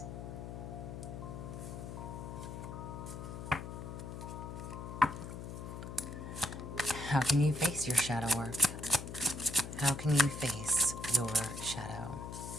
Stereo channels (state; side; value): noise; left; hum, 8 dB below the sound